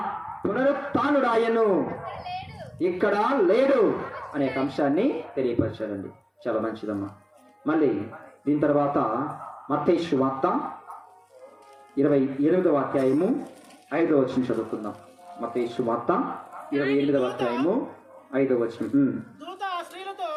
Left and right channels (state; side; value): identical; both; correlation 1.00